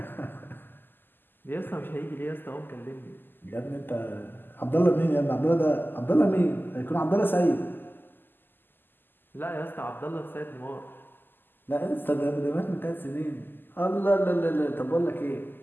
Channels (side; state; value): right; late; 0.093 ms